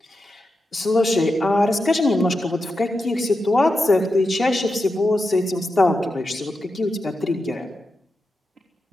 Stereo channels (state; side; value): normal; both; correlation 0.88